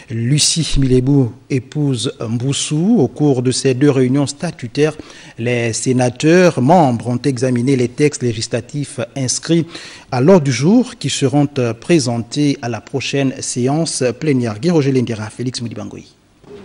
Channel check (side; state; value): both; identical; correlation 1.00